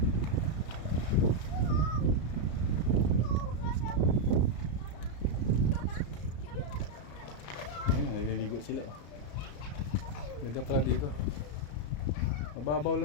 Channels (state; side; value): late; right; 34 ms